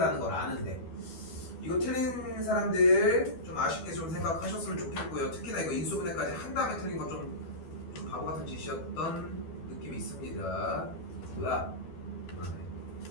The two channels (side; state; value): right; late; 12 ms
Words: 걸 아는데 이거 틀린 사람들 좀 아쉽게 좀 생각하셨으면 좋겠고요. 특히나 이거 인수분해까지 한 다음에 틀린 건 좀 바보 같은 짓이었던 느낌이 있습니다. 뭐야?